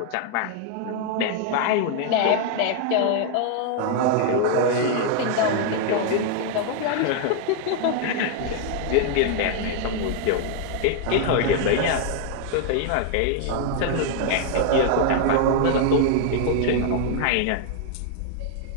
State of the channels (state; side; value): different; both; correlation 0.00